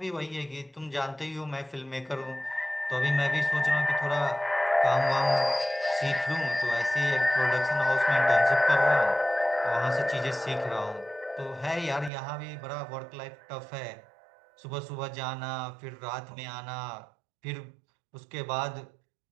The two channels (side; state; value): left; drops out; at 12.1 s